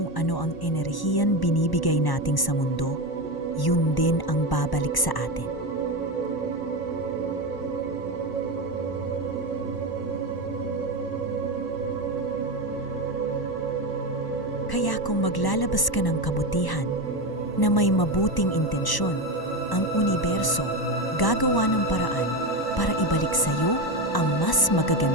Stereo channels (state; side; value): late; right; 1.0 ms